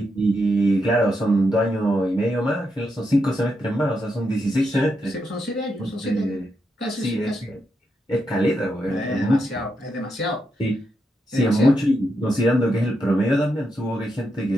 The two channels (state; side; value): normal; both; correlation 0.83